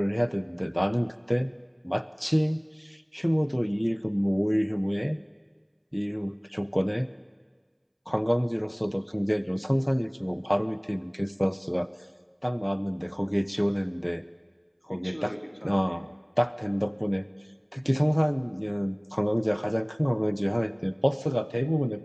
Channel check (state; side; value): identical; both; correlation 1.00